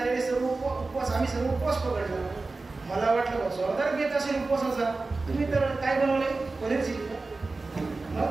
सर्व उपवास आम्ही सर्व उपवास पकडला. मला वाटलं जोरदार घेत असेल उपवासाचा. तुम्ही तर काय बनवले, पनीर चिली का?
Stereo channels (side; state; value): left; quieter; 3.6 dB